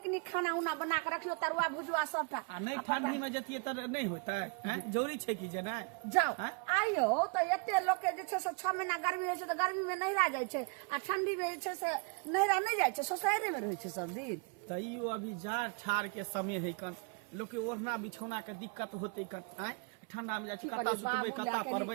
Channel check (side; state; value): left; quieter; 33.2 dB